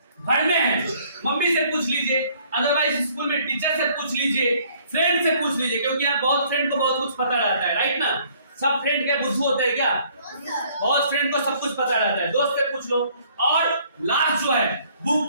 घर में है मम्मी से पूछ लीजिए, अदरवाइज स्कूल में टीचर से पूछ लीजिए, फ्रेंड से पूछ लीजिए, क्योंकि यार बहुत फ्रेंड को बहुत कुछ पता रहता है, राइट ना। सब फ्रेंड के बुद्धू होते हैं क्या? बहुत फ्रेंड को सब कुछ पता रहता है, दोस्त से पूछ लो। और लास्ट जो है बुक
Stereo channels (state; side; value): inverted; both; correlation -0.61